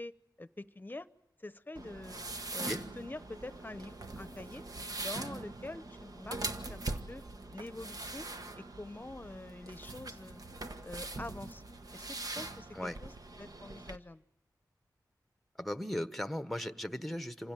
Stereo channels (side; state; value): both; normal; correlation 0.62